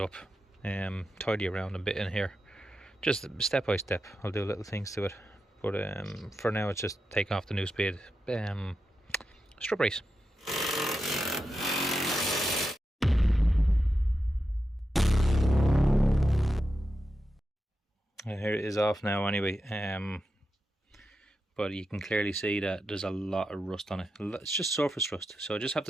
tidy around a bit in here. Just step by step, I'll do little things to it. But for now, it's just take off the Nuespeed strut brace. Here it is off now anyway, but you can clearly see that there's a lot of rust on it. It's just surface rust, so I just have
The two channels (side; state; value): both; normal; correlation 0.89